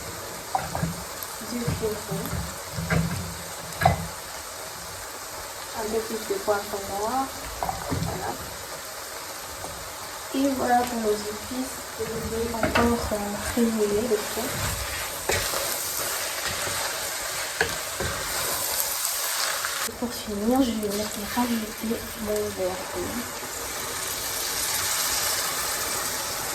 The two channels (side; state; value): both; identical; correlation 1.00